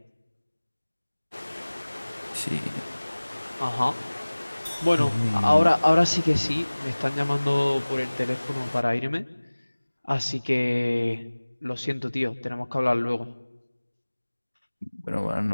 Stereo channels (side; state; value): both; inverted; correlation -1.00